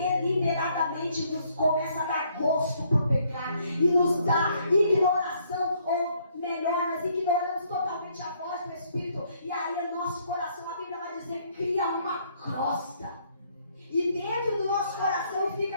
nos começa a dar gosto por pecar. E nos dá ignoração, ou melhor, nós ignoramos totalmente a voz do Espírito. E aí o nosso coração, a Bíblia vai dizer, cria uma crosta. E dentro do nosso coração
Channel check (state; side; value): inverted; both; correlation -0.68